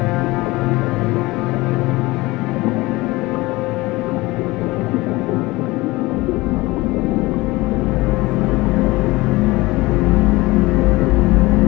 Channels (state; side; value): quieter; right; 21.0 dB